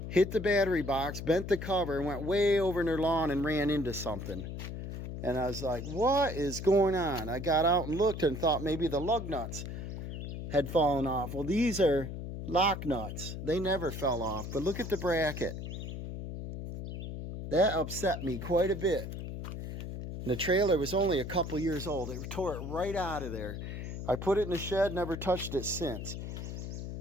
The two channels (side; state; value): left; noise; hum, 7 dB below the sound